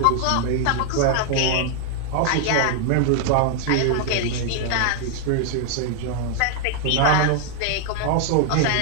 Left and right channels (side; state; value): both; different; correlation 0.00